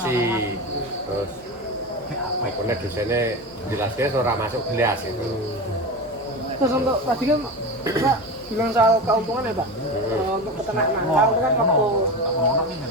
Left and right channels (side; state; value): both; normal; correlation 0.25